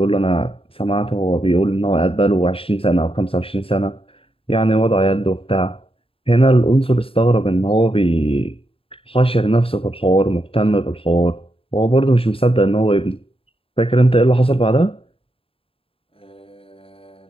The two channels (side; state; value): right; late; 0.27 ms